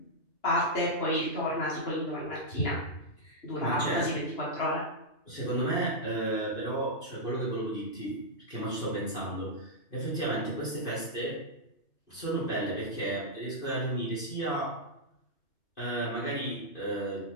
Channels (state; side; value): late; right; 2.5 ms